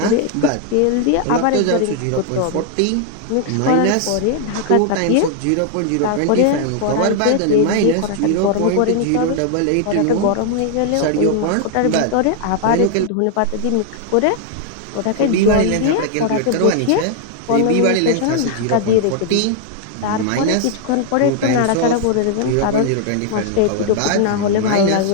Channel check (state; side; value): different; both; correlation 0.00